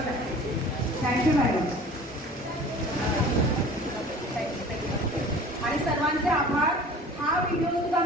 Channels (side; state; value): both; normal; correlation 0.44